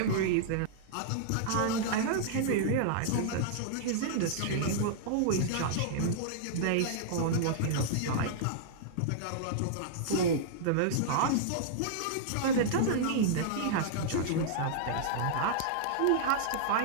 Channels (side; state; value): both; different; correlation -0.02